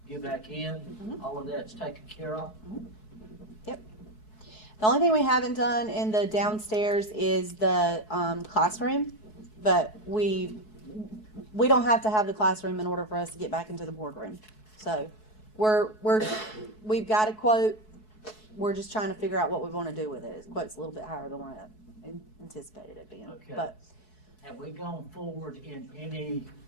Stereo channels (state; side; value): late; right; 4.7 ms